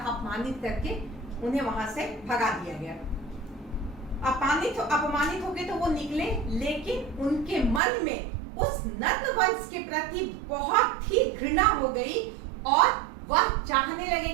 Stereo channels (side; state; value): left; drops out; at 7.8 s